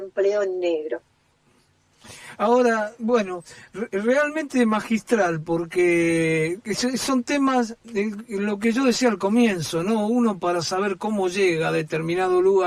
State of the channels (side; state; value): both; identical; correlation 1.00